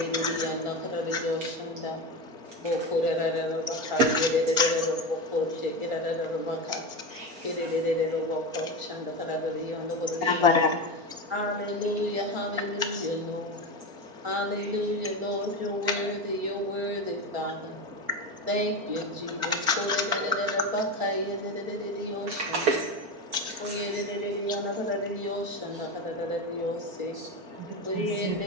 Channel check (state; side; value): late; left; 4.4 ms